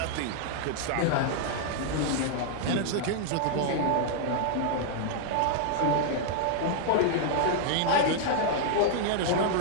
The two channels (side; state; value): both; different; correlation 0.00